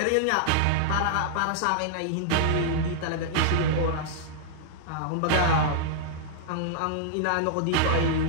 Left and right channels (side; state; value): both; different; correlation -0.01